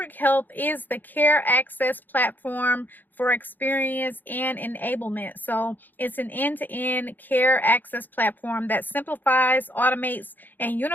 Health is the care access platform for experience and enablement. So it's an end-to-end care access platform that simplifies, automates, and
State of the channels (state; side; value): late; right; 0.087 ms